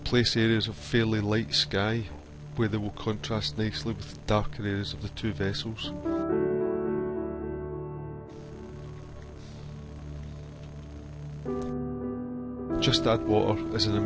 place areas of fairly light sky where they will contrast nicely with the darker areas of the two vessels. Just Add Water is an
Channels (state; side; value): identical; both; correlation 1.00